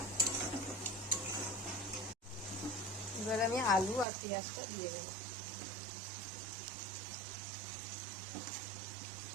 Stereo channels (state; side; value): drops out; left; at 4.0 s